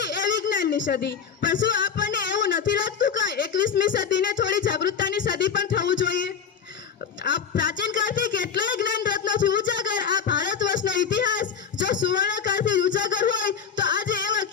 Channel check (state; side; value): quieter; right; 7.1 dB